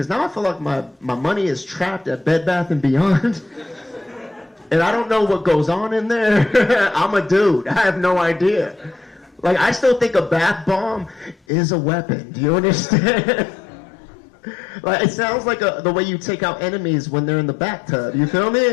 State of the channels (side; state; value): right; drops out; at 11.4 s